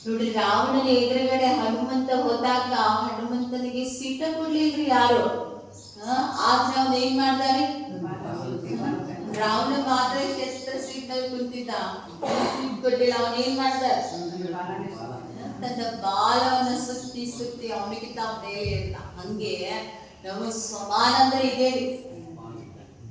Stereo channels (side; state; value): both; identical; correlation 1.00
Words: ನೋಡಿ, ರಾವಣನ ಎದುರುಗಡೆ ಹನುಮಂತ ಹೋದಾಗ ಹನುಮಂತನಿಗೆ ಸೀಟ ಕೊಡ್ಲಿಲ್ರಿ ಯಾರು. ಆದ್ರೆ ಅವನು ಏನ್ ಮಾಡ್ತಾರೆ, ರಾವಣ ಮಾತ್ರ ಕ್ಷೇತ್ರ ಸೀಟ್ನಲ್ಲಿ ಕುಂತಿದ್ದ, ಸೀಟ್ ಕೊಟ್ಟಿಲ್ಲ. ಅವನ್ ಏನ್ ಮಾಡ್ತಾರೆ, ತನ್ನ ಬಾಲವನ್ನ ಸುತ್ತಿ ಸುತ್ತಿ ಅವನಿಗೆ ತಾವು ಮೇಲೆ ಇರ್ತ. ಹಂಗೆ ನಾವು ಸ್ವಮಾನ ಅಂದ್ರೆ ಇದೇವಿ.